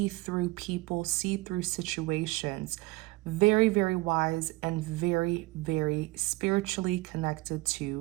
through people, see through situations. Very, very wise and very, very spiritually connected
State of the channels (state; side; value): quieter; left; 22.3 dB